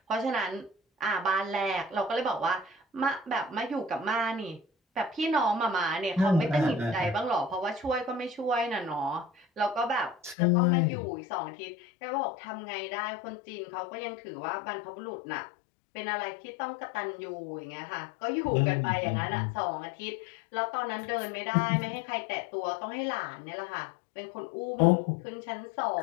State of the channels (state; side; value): drops out; right; at 10.4 s